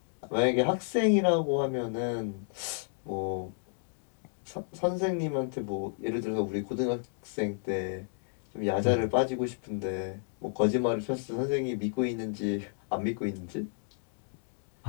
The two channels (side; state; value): right; silent; digital silence